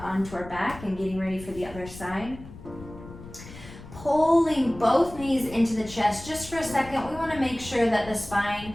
our back and getting ready for the other side. Pulling both knees into the chest just for a second. We want to make sure that the spine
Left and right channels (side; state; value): left; noise; rumble, 15 dB below the sound